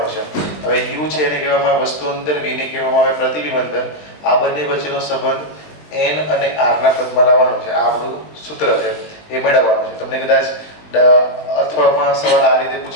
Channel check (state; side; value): late; right; 20 ms